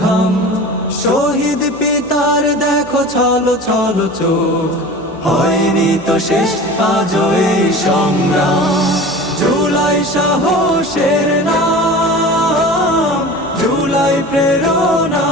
ঘাম। শহীদ পিতার দেখো ছলো ছলো চোখ, হয়নি তো শেষ আজও এই সংগ্রাম। জুলাই সাহসের নাম, জুলাই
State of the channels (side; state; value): left; noise; hum, 23 dB below the sound